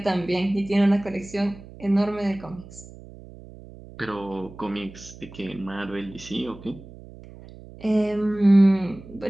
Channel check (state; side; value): noise; right; hum, 18 dB below the sound